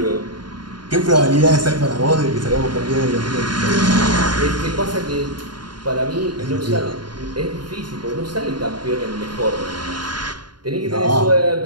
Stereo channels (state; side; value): late; left; 0.71 ms